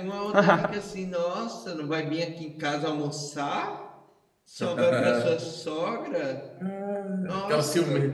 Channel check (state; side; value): identical; both; correlation 1.00